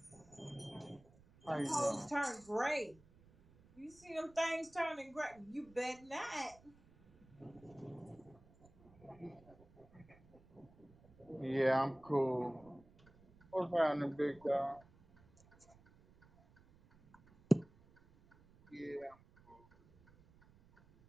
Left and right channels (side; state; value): right; noise; rumble, 26 dB below the sound